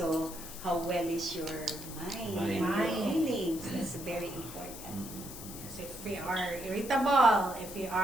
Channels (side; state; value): left; noise; hiss, 12 dB below the sound